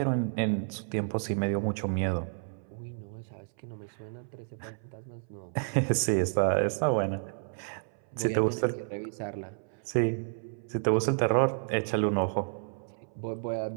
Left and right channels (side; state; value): left; silent; 57 dB below the other